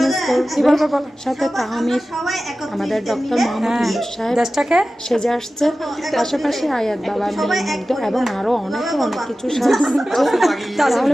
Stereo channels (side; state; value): both; normal; correlation 0.95